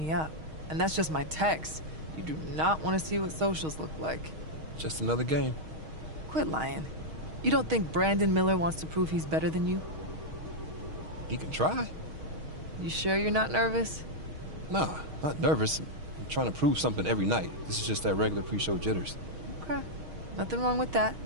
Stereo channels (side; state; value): left; late; 6.4 ms